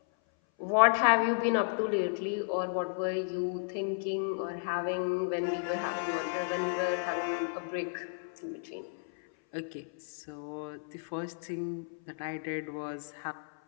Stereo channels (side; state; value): right; silent; 56 dB below the other